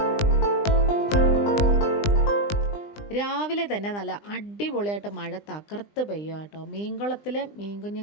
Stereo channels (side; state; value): right; late; 20 ms